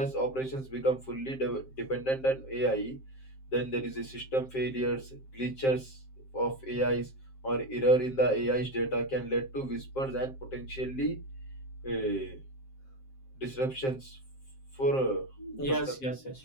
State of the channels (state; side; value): late; right; 7.6 ms